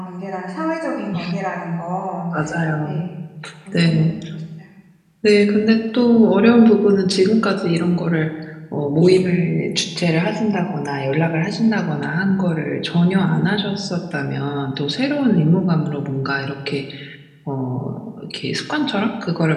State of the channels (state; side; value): identical; both; correlation 1.00